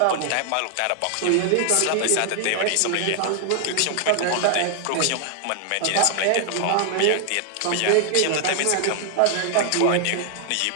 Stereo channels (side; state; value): both; different; correlation 0.00